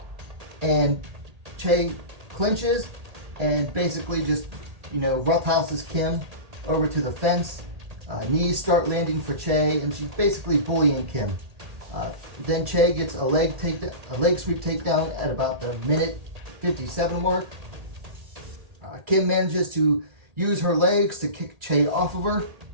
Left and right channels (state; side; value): late; left; 1.8 ms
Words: and Choi clinches and basically just, roughhouses Kim over to the fence. Knees start landing for Choi and she's basically bullying Kim. Then Choi gets a leg sweep takedown at about the minute 57 mark. Kim manages to use her legs to kick Choi off of her,